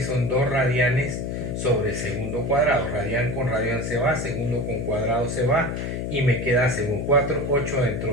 son 2 radianes sobre segundo cuadrado. Radian con radian se va, segundo con cuadrado se va, y me queda segundo. 4, 8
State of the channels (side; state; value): left; noise; hum, 3 dB below the sound